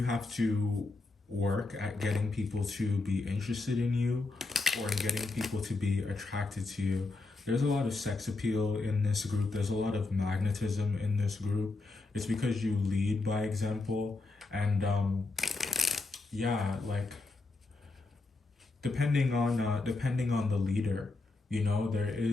have to work at getting people to be interested in you or in getting people to be attracted to you. There's a lot of sex appeal in this group. There's a lot of magnetism in this group. It's because you lead by example. And yeah, like depending on the leader, you know, there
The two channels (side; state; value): right; quieter; 3.4 dB